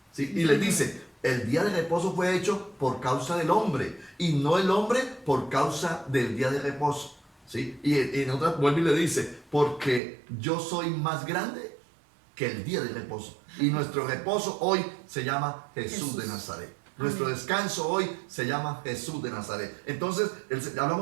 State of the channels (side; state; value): left; drops out; at 10.0 s